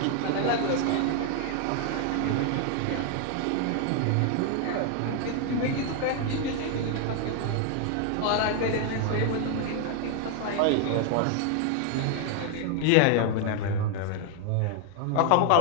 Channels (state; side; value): different; both; correlation 0.00